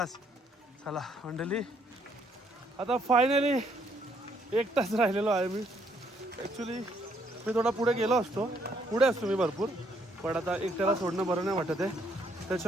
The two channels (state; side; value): normal; both; correlation 0.69